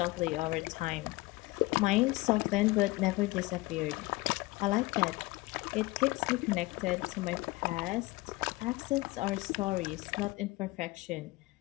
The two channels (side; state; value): right; quieter; 21.3 dB